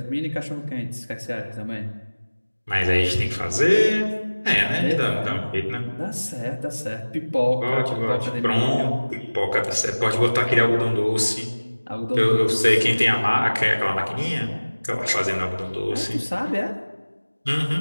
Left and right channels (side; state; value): both; inverted; correlation -1.00